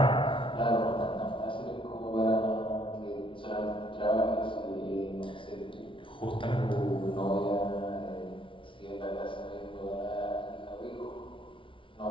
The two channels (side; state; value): right; late; 0.25 ms